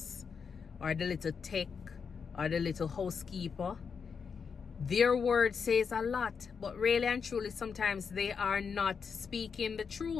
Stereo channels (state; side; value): quieter; right; 6.0 dB